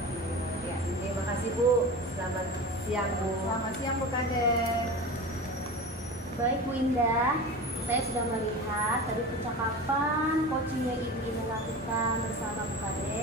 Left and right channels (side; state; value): both; normal; correlation 0.31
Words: Ya, terima kasih Bu. Selamat siang Bu. Selamat siang Bu Kadek. Baik Bu Indah, saya sudah melihat tadi percakapan coaching yang Ibu Indah lakukan bersama Bu